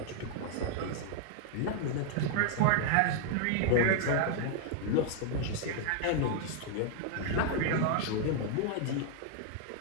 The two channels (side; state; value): both; different; correlation 0.00